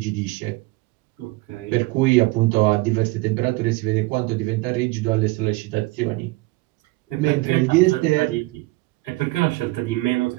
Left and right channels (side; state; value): left; quieter; 21.5 dB